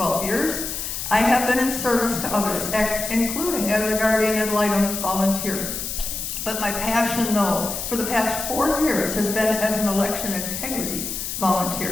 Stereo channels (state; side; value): noise; left; hiss, 5 dB below the sound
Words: years. I have been in service to others, including as a guardian ad litem volunteer. But my passion, though, for the past 4 years has been as an election integrity